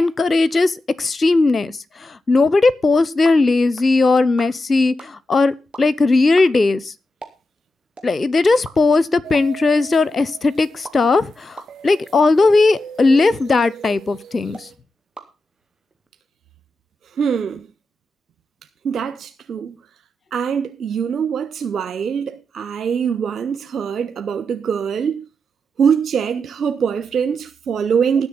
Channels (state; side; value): normal; both; correlation 0.88